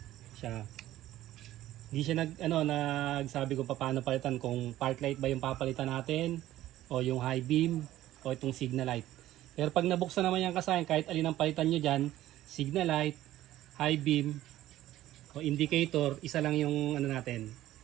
Siya. Hindi siya nagsabi kung paano palitan, kung park light ba yung papalitan natin o yung high beam o itong signal light. Pero pag nabuksan naman yung kasayan, kahit alin ang palitan nyo dyan, signal light, high beam o indicator, isa lang yung natin.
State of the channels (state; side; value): quieter; left; 14.4 dB